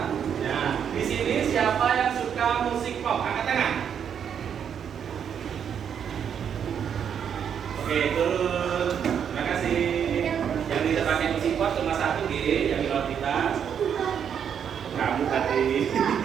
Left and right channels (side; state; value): left; quieter; 8.1 dB